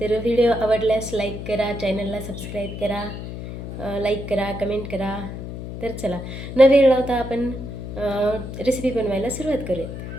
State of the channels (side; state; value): left; noise; hum, 8 dB below the sound